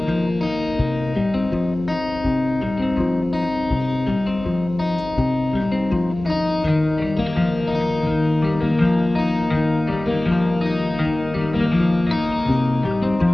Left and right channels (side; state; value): left; noise; hum, 14 dB below the sound